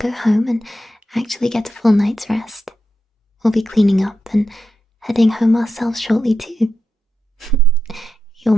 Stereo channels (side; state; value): both; normal; correlation 0.87